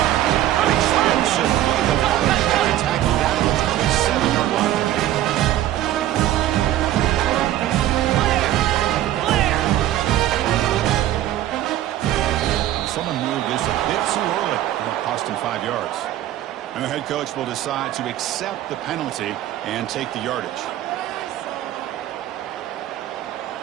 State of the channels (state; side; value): quieter; left; 13.2 dB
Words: An explosive play. The running back tackled down the 27-yard line. Someone moved this a bit too early. It'll cost him 5 yards. And the head coach will decide to accept the penalty and take the yardage.